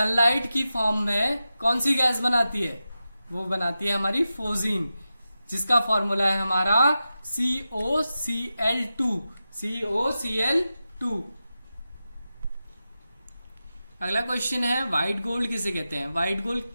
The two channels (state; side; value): inverted; both; correlation -0.92